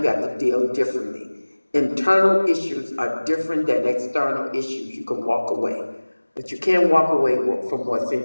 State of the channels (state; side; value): inverted; both; correlation -1.00